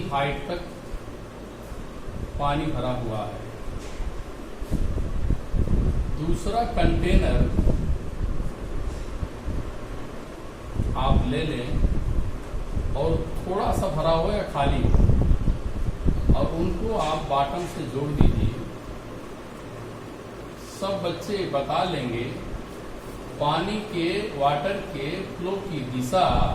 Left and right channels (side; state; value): both; identical; correlation 1.00